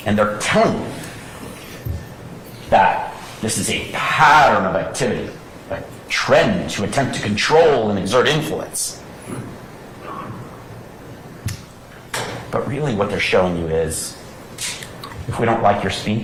And they're telling you that this is a pattern of activity, trend to attempt to control and exert influence. But really what they're showing you is, if we don't like your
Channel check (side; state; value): both; identical; correlation 1.00